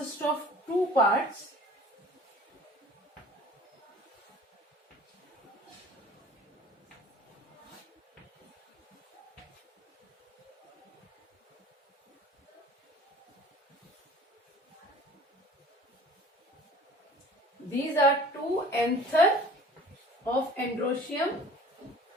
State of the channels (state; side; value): normal; both; correlation 0.46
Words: of two parts. These are two anther of androecium,